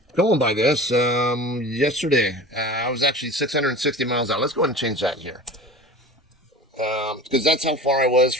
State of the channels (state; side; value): normal; both; correlation 0.36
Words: going by this, yesterday I was actually 660 miles out. Let's go ahead and change that here. Because that's how far I was